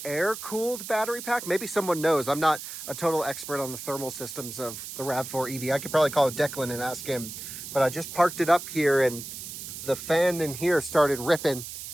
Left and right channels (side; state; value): right; noise; hiss, 10 dB below the sound